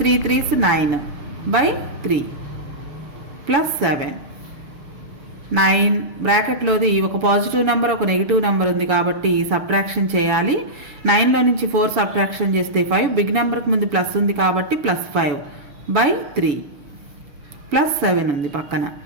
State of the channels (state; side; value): late; left; 7.1 ms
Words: 3s 9/3 +7. 9 బ్రాకెట్లోది ఒక పాజిటివ్ నెంబర్ ఒక నెగిటివ్ నెంబర్ ఉంది కాబట్టి సబ్ట్రాక్షన్ చేయాలి. 9లో నుంచి 4 సబ్ట్రాక్షన్ చేస్తే 5, బిగ్ నెంబర్కి ముందు ప్లస్ ఉంది కాబట్టి +5/3 +7 ఉంది పక్కన.